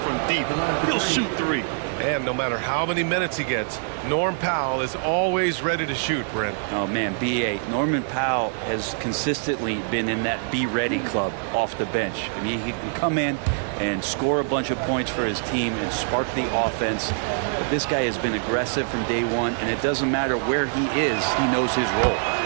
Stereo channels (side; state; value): left; silent; digital silence